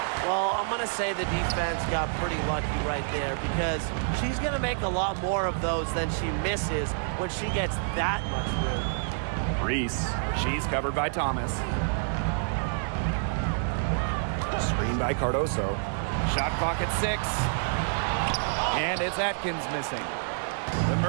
Well, I'm going to say the defense got pretty lucky right there because she's going to make a lot more of those than she misses when she gets that much room. Reese. She's covered by Thomas. Screen by Cardoso. Shot clock at 6. And it's Atkins missing. The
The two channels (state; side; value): silent; left; digital silence